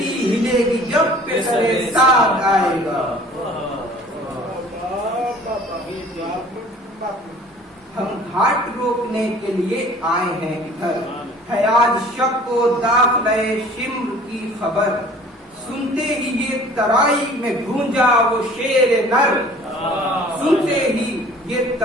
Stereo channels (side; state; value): both; normal; correlation 0.49